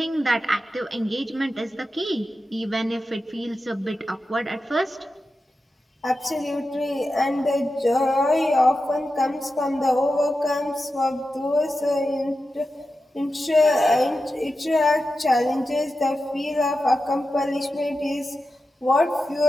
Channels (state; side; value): normal; both; correlation 0.91